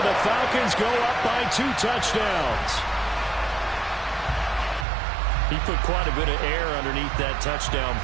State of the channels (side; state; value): left; drops out; at 4.9 s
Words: the Falcons go up by 2 touchdowns. He put quite a bit of air underneath that touchdown